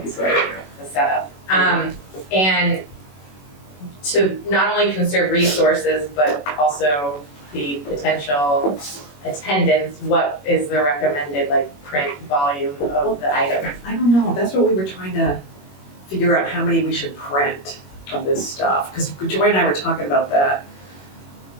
be great. The setup. And to not only conserve resources, but also the potential attendance, what is the recommended print volume of the items? I don't know, that's what we were trying to figure out how many we should print of this stuff, because Joy and I were talking about that.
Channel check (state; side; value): late; right; 21 ms